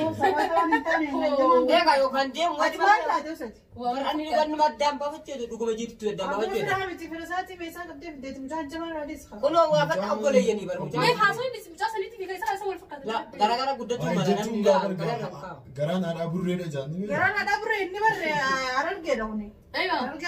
سويتوني تاني إيه كايو كان ديم ما واجب لا دوست أنا نقول ما دام بفتشة دوكو بجيت تو دام ما بفتشة فهمتي فرساتي بيسا قبل بديت مجان جمال راديس خا كله وافق أبولي يعني برا ما مجان يحاسون بس مجاسا نيتي في كيسا أسوي الفكرة لا gara قدتو ما أنا garaan haadha burreedha jaanni garaan ada bure inni barre aran gedawni أيوة aran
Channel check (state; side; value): identical; both; correlation 1.00